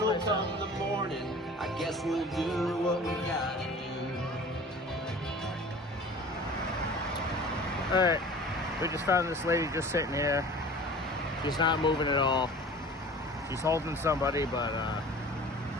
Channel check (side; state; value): both; normal; correlation 0.42